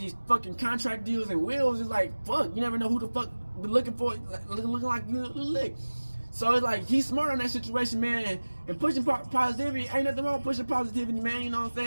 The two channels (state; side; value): inverted; both; correlation -1.00